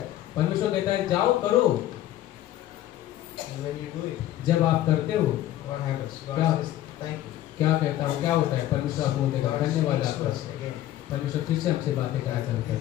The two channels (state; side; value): quieter; right; 13.4 dB